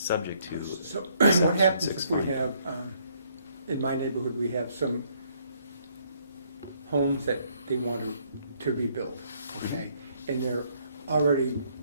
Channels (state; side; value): inverted; both; correlation -0.67